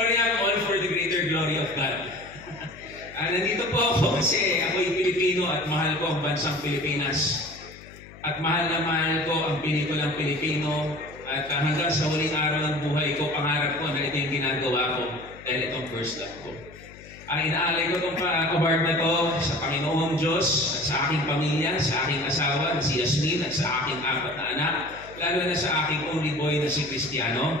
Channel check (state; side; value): noise; left; hum, 19 dB below the sound